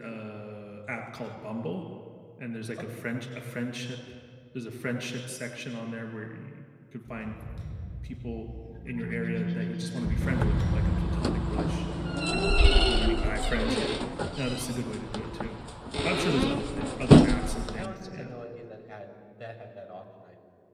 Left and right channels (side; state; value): both; identical; correlation 1.00